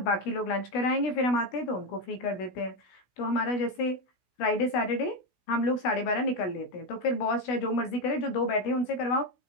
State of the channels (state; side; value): late; right; 16 ms